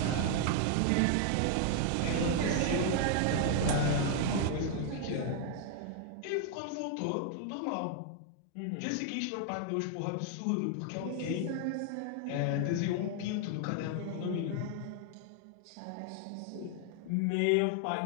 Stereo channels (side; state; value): both; different; correlation 0.00